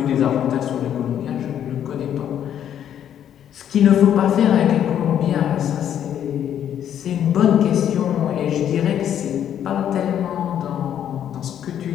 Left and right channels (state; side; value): quieter; right; 9.9 dB